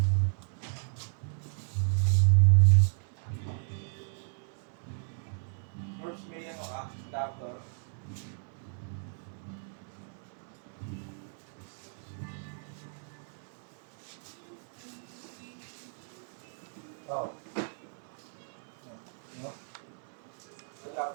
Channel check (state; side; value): silent; left; 55 dB below the other